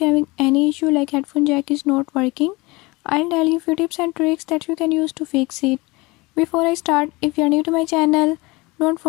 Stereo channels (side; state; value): right; quieter; 23.8 dB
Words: you're having any issue like headphone jack is not working, I'll tell you few tips and tricks that you can use to fix it. Before I start, if you're new to my channel, don't